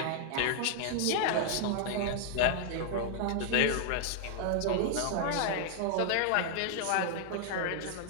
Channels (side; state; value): both; different; correlation 0.00